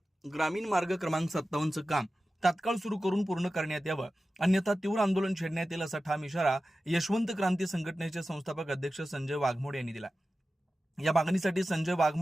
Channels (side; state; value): both; normal; correlation 0.94